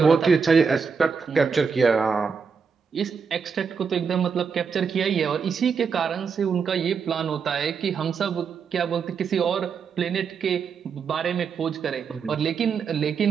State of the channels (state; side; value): quieter; left; 5.9 dB